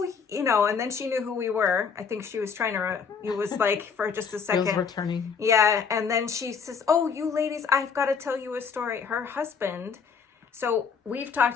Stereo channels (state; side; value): quieter; right; 6.0 dB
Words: you know, and then she knew who we were. I think she was trying to, it was like for just a second. It was returning. Yeah. And then she says, oh, you ladies, I've got to tell you a story. Her husband, so we've talked